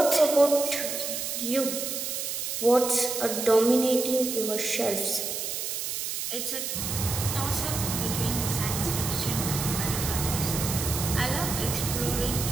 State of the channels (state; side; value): noise; right; hiss, 3 dB below the sound